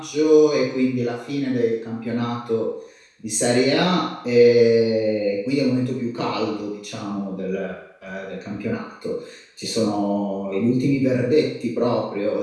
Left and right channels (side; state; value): both; identical; correlation 1.00